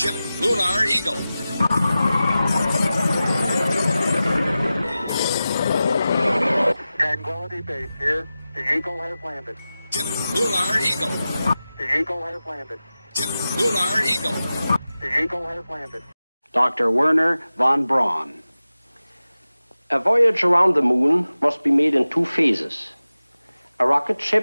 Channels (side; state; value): both; inverted; correlation -0.95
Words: Lunar Eagle. Tranquility Base here. The Eagle has landed. Ship Lunar Eagle. The Eagle has landed. Ship Lunar Eagle. The Eagle has landed. Dr. Werner von Braun. A voyage around the moon must be made in two phases. A rocket